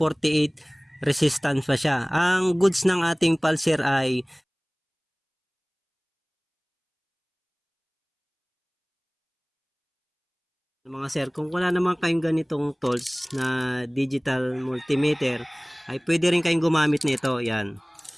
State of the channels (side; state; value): both; identical; correlation 1.00